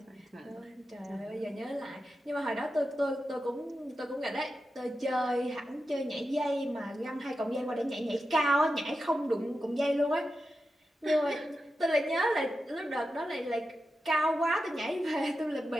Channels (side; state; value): both; normal; correlation 0.90